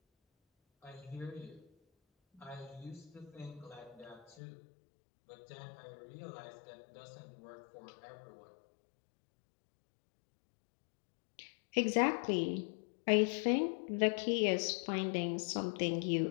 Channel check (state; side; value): drops out; right; at 4.4 s